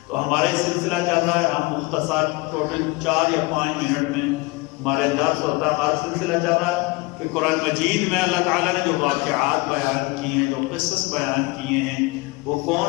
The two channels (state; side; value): quieter; right; 24.6 dB